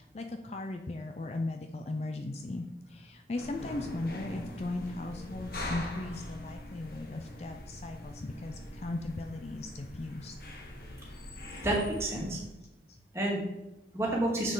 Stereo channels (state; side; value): normal; both; correlation 0.67